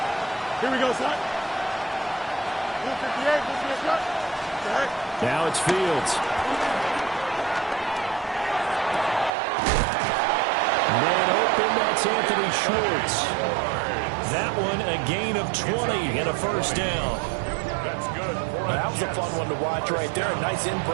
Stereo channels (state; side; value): drops out; left; at 9.3 s